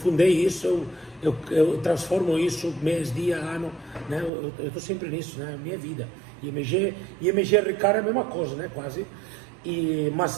isso, eu transformo isso mês, dia, ano, né? Eu estou sempre nisso, né? Minha vida. E MG Ricardo é a mesma coisa, né? Quase. Mas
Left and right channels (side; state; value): left; drops out; at 4.3 s